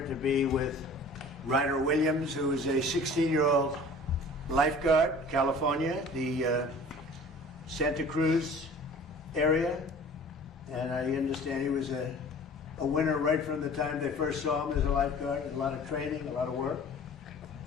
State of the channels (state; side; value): normal; both; correlation 0.45